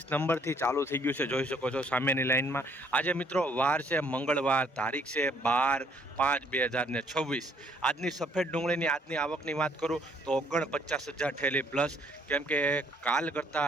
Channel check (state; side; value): normal; both; correlation 0.64